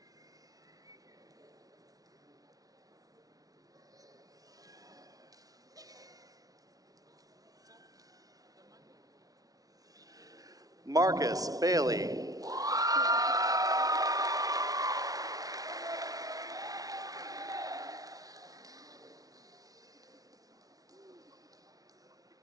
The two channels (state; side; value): late; left; 0.18 ms